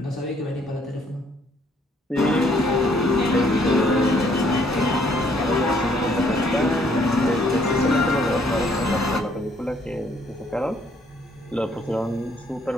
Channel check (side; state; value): both; normal; correlation 0.66